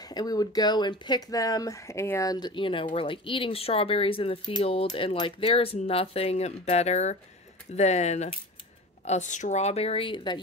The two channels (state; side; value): normal; both; correlation 0.33